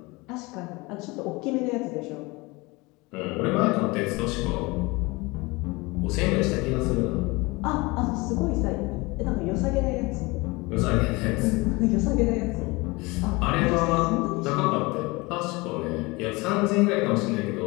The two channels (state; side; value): quieter; right; 24.3 dB